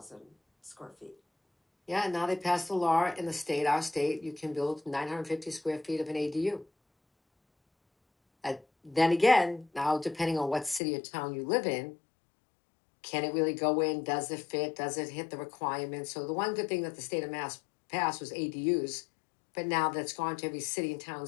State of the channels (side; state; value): right; drops out; at 10.8 s